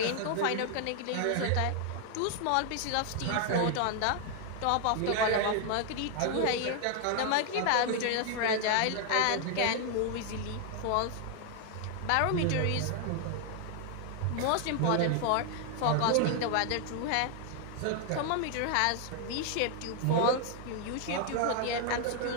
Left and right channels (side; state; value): both; different; correlation 0.00